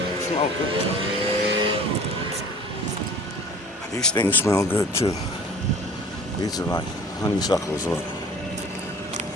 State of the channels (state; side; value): normal; both; correlation 0.46